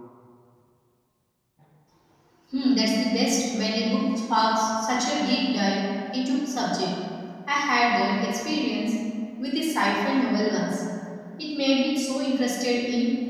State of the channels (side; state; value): both; identical; correlation 1.00